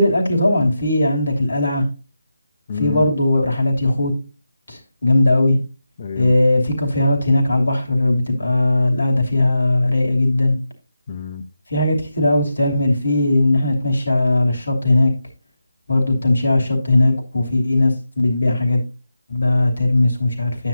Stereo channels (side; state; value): both; inverted; correlation -0.90